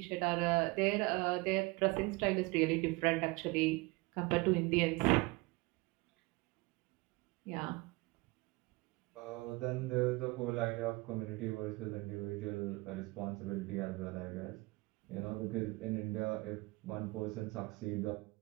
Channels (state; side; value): quieter; left; 24.1 dB